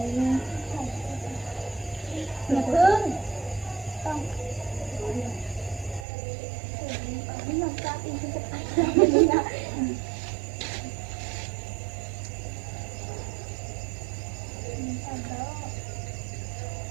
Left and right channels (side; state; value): left; drops out; at 6.1 s